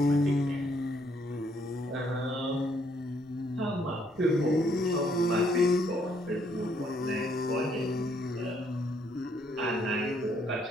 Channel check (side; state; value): both; normal; correlation 0.69